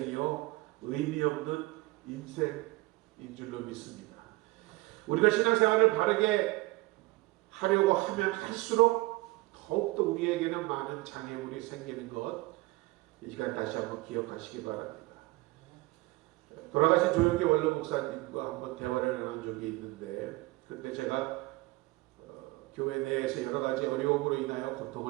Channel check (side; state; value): left; quieter; 21.5 dB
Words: 의미 없는 인생인 줄로 믿습니다. 우리가 신앙생활을 바르게 하려고 하면 할수록 더욱더 우리에게는 많은 장애물이 생기는 것, 이 시간 다시 한번 기억하시기 바랍니다. 돌아가신 조용기 원로 목사님과 한번 대화를 나눈 적이 있는데 그때 제가 교회 내에서 여러 가지 어려움으로 인하여